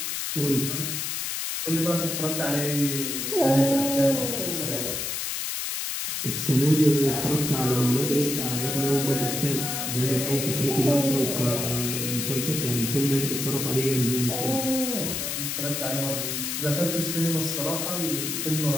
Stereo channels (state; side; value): noise; left; hiss, 2 dB below the sound